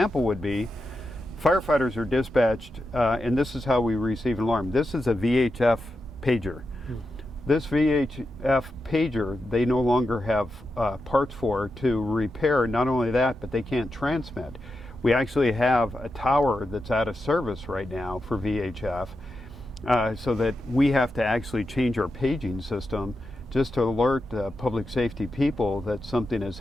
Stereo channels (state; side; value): normal; both; correlation 0.88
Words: would be firefighters are dispatched, and this is how we receive an alarm. This is a VHF pager. This VHF pager, they no longer have parts for to repair. Not only that, but they can't transmit. We actually have a tower that's out of service right now for VHF, so that we have to actually change our paging system just to alert the public safety people that something is